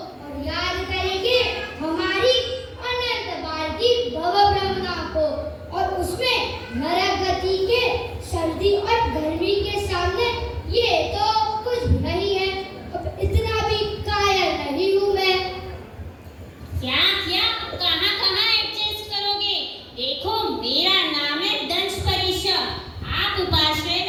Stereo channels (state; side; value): identical; both; correlation 1.00